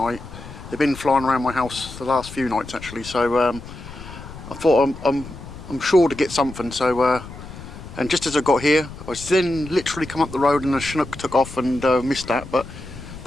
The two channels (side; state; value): left; noise; rumble, 14 dB below the sound